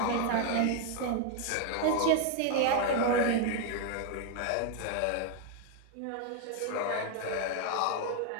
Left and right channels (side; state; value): both; different; correlation 0.01